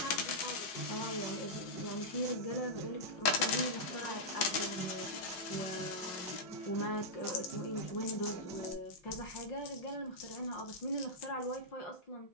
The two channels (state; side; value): late; right; 6.1 ms